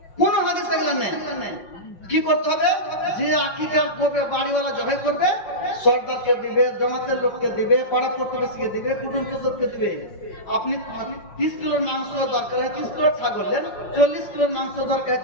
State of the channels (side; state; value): right; late; 5.6 ms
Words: কোন হাদিস এগুলো নেই। কি করতে হবে? যে আকিকা করবে, বাড়িওয়ালা জবাই করবে, সরদারকে দিবে, জমাতের লোককে দিবে, পাড়া প্রতিবেশীকে দিবে, কুটুম সদরকে দিবে। আপনি 30 কিলোর মাংস দরকার হয় 30 কিলো ছাগল নেন, 40 কিলোর মাংস দরকার